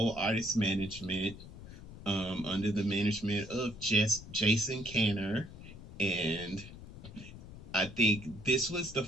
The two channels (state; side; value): noise; left; rumble, 14 dB below the sound